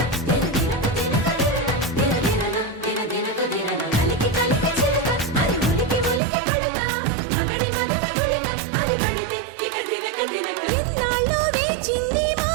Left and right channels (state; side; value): drops out; left; at 6.2 s